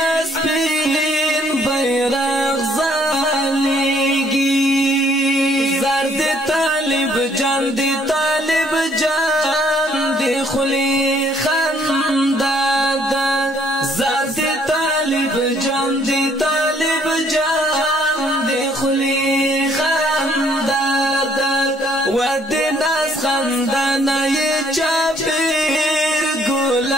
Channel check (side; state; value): both; normal; correlation 0.64